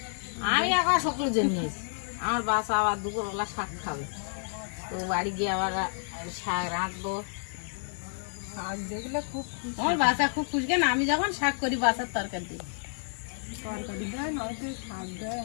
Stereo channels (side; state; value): right; silent; digital silence